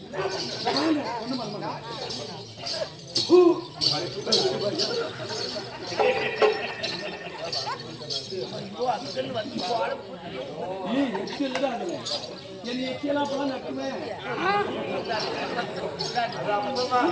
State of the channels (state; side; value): identical; both; correlation 1.00